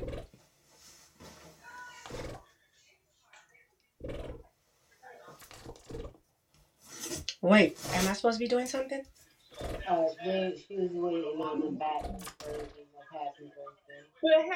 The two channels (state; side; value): identical; both; correlation 1.00